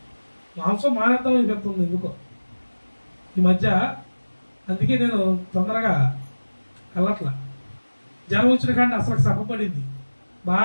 మాంసం మానేద్దాం అని చెప్తుంది ఎందుకో ఈ మధ్య. అందుకే నేను తొందరగా వెళ్ళట్లా. జనం వచ్చిన కానీ అసలు సభపడింది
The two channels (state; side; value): inverted; both; correlation -1.00